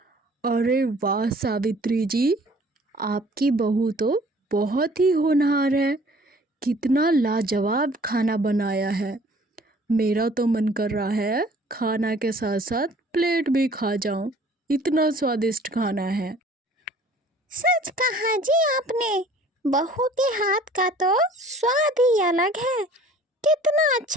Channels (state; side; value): normal; both; correlation 0.52